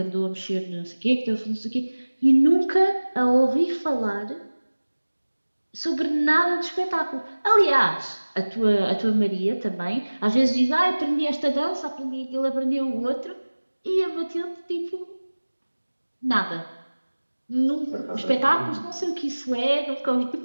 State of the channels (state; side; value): inverted; both; correlation -1.00